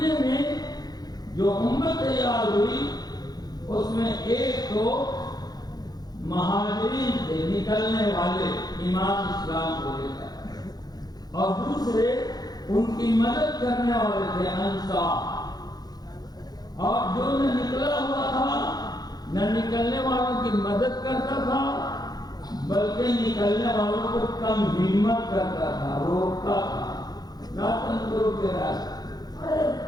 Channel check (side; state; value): right; late; 0.19 ms